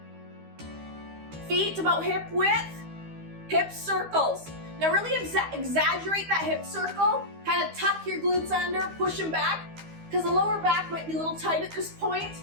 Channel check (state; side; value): late; left; 12 ms